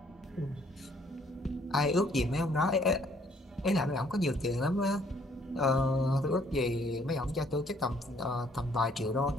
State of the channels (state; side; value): normal; both; correlation 0.63